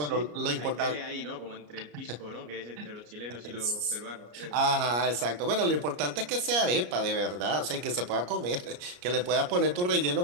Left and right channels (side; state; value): left; late; 34 ms